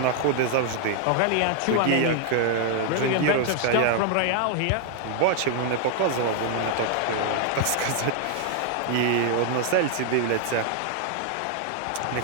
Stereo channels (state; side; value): different; both; correlation 0.00